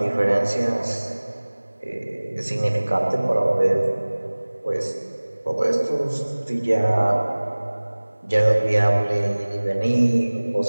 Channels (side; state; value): both; inverted; correlation -1.00